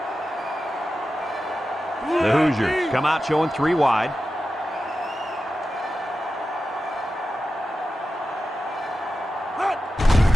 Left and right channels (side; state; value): both; normal; correlation 0.92